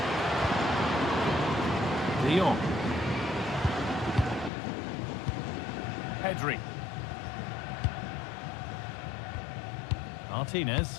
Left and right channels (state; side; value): drops out; right; at 4.5 s